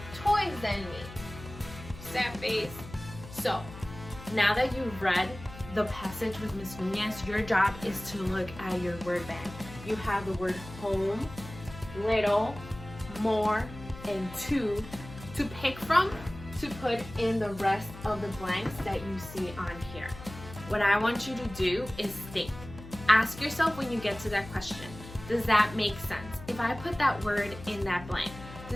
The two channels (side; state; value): left; noise; hum, 15 dB below the sound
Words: toys than me. Sad face. So, now that you've read the passage with Ms. Nunez, your job is to look at your word bank. You have the word home, little, more, and two to pick from to put in the rest of the blanks that you see on here. What I want you to do is think. Ask yourself when you get to that question, does that make sense? If I put that word in that blank,